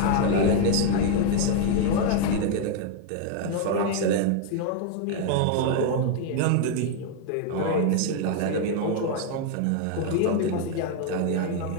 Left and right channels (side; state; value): both; different; correlation 0.01